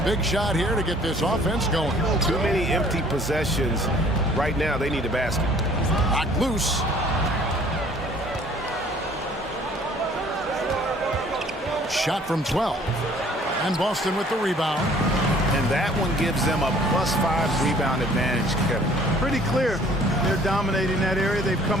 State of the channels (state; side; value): normal; both; correlation 0.55